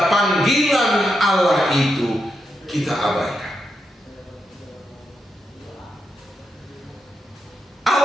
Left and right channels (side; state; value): both; normal; correlation 0.84